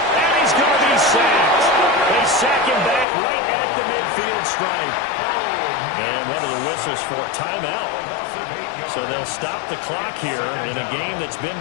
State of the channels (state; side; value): drops out; right; at 3.1 s